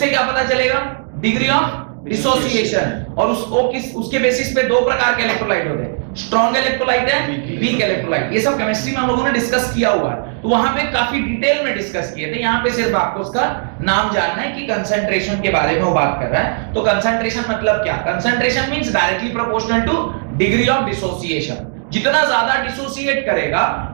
क्या पता चलेगा? Degree of dissociation. और उसके बेसिस पे दो प्रकार के इलेक्ट्रोलाइट होते हैं, स्ट्रॉन्ग इलेक्ट्रोलाइट है, वीक इलेक्ट्रोलाइट। ये सब केमिस्ट्री में हम लोगों ने डिस्कस किया हुआ है, तो वहां पे काफी डिटेल में डिस्कस किए थे। यहाँ पे सिर्फ आपको उसका नाम जानना है कि कंसंट्रेशन के बारे में वो बात कर रहा है। तो कंसंट्रेशन मतलब क्या? Concentration means directly proportional two degree of dissociation. जितना ज्यादा डिसोसिएट करेगा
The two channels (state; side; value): silent; left; 62 dB below the other